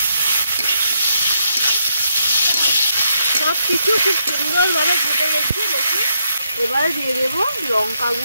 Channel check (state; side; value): inverted; both; correlation -0.78